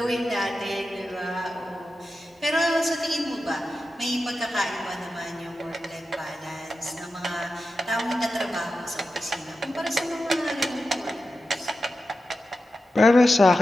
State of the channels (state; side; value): normal; both; correlation 0.92